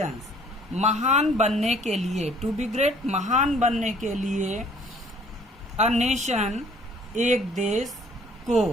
महान बनने के लिए, to be great, महान बनने के लिए a nation, एक देश को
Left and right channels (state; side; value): normal; both; correlation 0.57